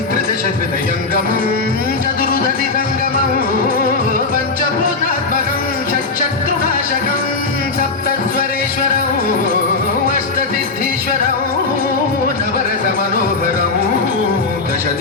त्रिदशहृदयङ्गमं चतुर्दधिसङ्गमं पञ्चभूतात्मकं षट्शत्रुनाशकं सप्तस्वरेश्वरं अष्टसिद्धीश्वरं नवरसमनोहरं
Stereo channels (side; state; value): right; quieter; 3.8 dB